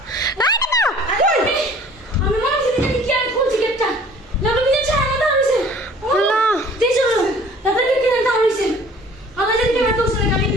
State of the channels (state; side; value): normal; both; correlation 0.51